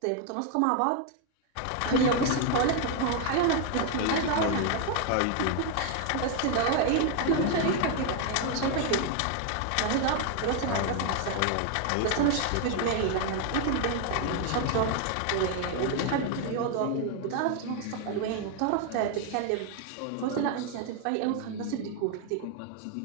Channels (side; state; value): both; different; correlation 0.00